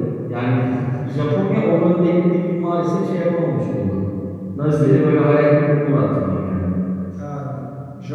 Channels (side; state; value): both; identical; correlation 1.00